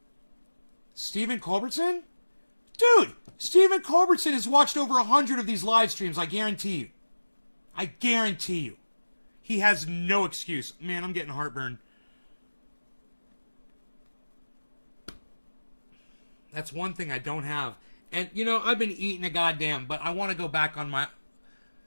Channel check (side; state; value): both; inverted; correlation -1.00